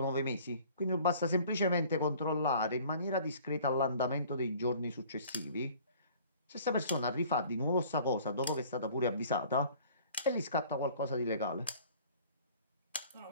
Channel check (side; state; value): both; inverted; correlation -0.51